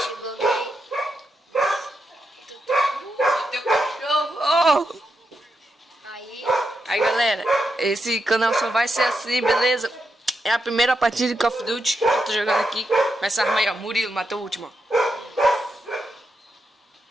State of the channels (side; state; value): both; normal; correlation 0.85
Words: alguém. Teu cachorro! Aí, Galera, esse canal só vai ser assim, beleza? É a primeira partida de Call of Duty que eu tô jogando aqui. Com essa arma aí, ó. Murilo, matou o último, ó.